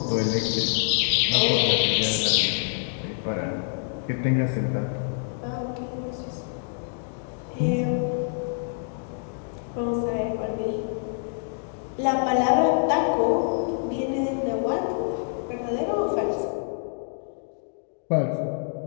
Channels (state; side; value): silent; right; digital silence